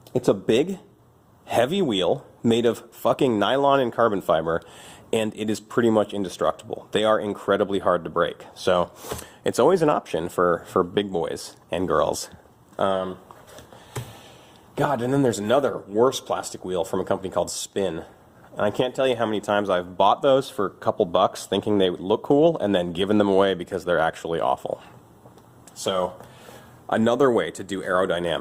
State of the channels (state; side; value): identical; both; correlation 1.00